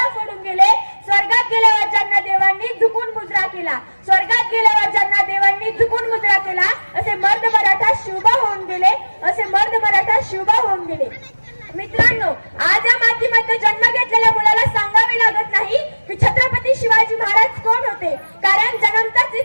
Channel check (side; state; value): both; inverted; correlation -1.00